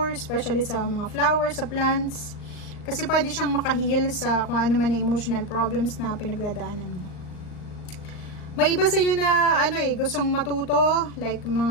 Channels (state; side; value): late; right; 39 ms